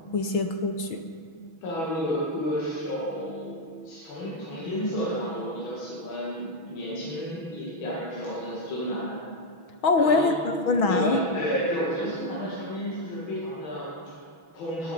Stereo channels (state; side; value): late; right; 6.2 ms